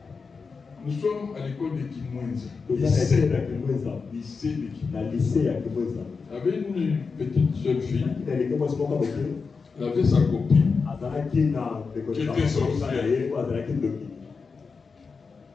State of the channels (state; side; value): quieter; right; 4.9 dB